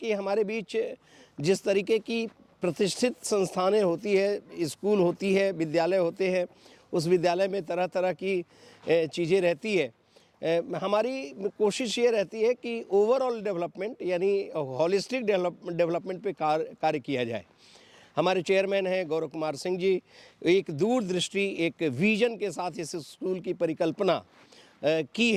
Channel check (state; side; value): identical; both; correlation 1.00